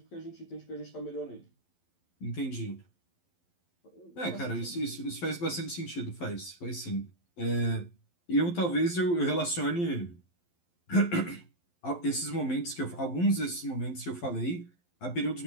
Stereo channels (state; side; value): late; right; 11 ms